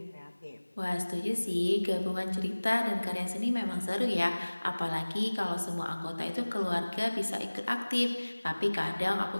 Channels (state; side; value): inverted; both; correlation -1.00